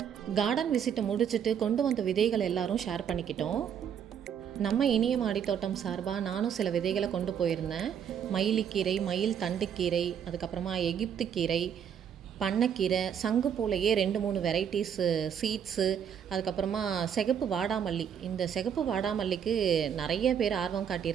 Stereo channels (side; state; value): left; quieter; 8.3 dB